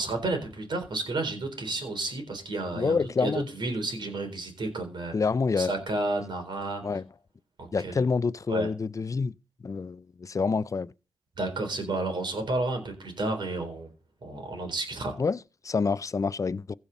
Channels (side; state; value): both; normal; correlation 0.73